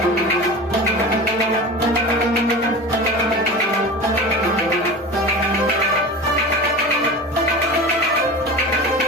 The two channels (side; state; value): both; normal; correlation 0.31